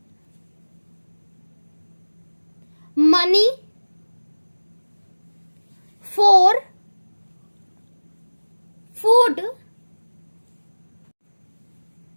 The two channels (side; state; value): both; inverted; correlation -1.00